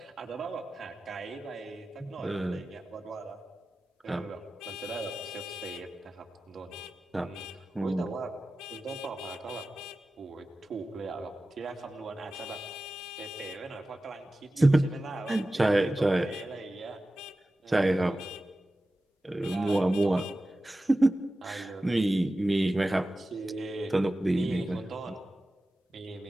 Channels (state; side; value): normal; both; correlation 0.95